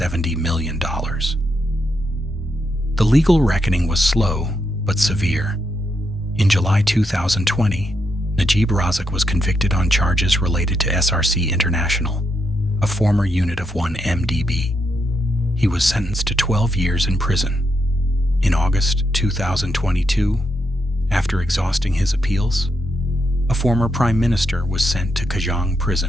million. The legal reckoning was slow but severe. In July 2020, Najib Razak was convicted on charges related to SRC International, a former unit of 1MDB. He was sentenced to 12 years in prison. In August 2022, after exhausting his appeals, a former prime minister was sent to Kajang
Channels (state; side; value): normal; both; correlation 0.81